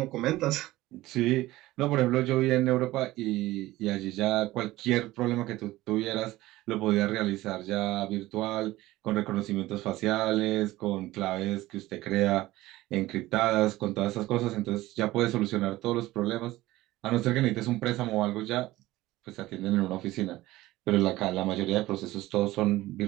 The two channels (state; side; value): quieter; left; 17.4 dB